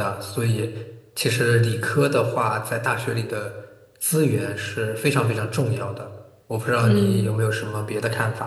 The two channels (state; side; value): identical; both; correlation 1.00